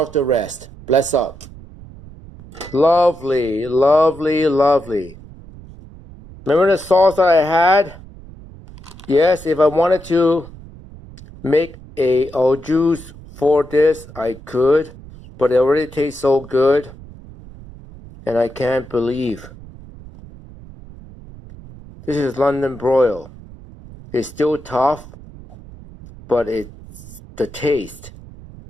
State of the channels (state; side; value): noise; right; rumble, 18 dB below the sound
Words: the rest. Bless up. Lovely, lovely, lovely. Remember the sauce that I had? Yes, if I wanted to make a au juice for this, I could. But it already tastes so good. And I can't believe. This is London broil. It's still tough, but it's the taste.